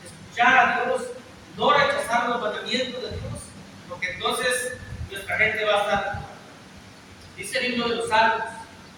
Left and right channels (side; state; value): both; identical; correlation 1.00